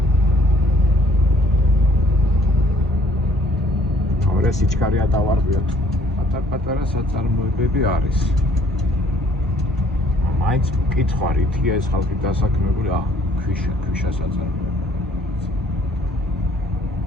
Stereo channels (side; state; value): both; normal; correlation 0.60